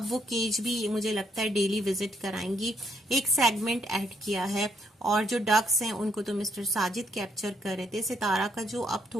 वो केज भी मुझे लगता है डेली विजिट कराएंगी। एक सेगमेंट ऐड किया है और जो डक्स हैं उनको तो मिस्टर साजिद कैप्चर कर रहे थे। सितारा का जो अब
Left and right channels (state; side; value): normal; both; correlation 0.72